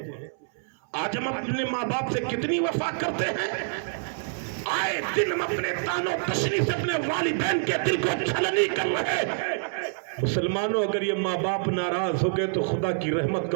آج ہم اپنے ماں باپ سے کتنی وفا کرتے ہیں. آئے دن ہم اپنے تانو تشنی سے اپنے والدین کے دل کو چھلنی کر رہے. مسلمانوں, اگر یہ ماں باپ ناراض ہو گئے تو خدا کی رحمت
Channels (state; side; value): silent; left; 58 dB below the other